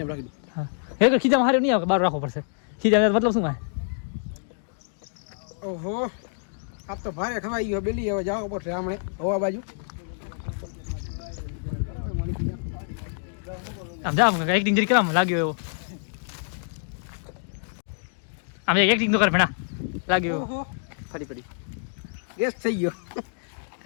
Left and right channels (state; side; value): silent; right; digital silence